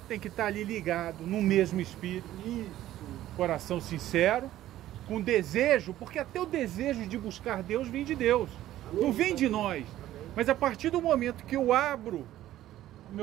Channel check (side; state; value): left; quieter; 13.7 dB